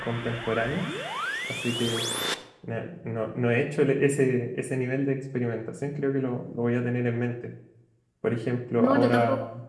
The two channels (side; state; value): both; identical; correlation 1.00